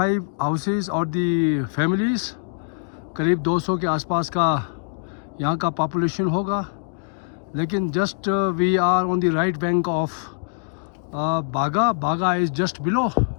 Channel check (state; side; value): silent; right; digital silence